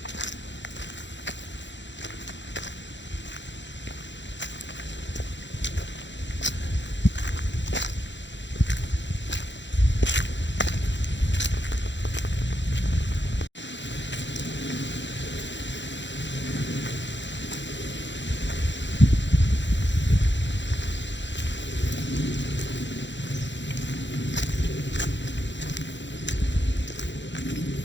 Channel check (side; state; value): right; late; 0.53 ms